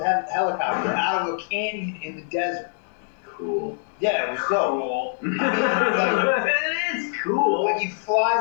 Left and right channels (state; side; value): silent; right; 63 dB below the other